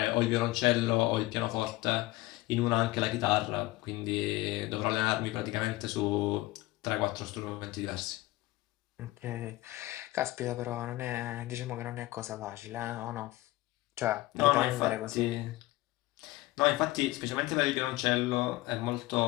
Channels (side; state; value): right; quieter; 18.3 dB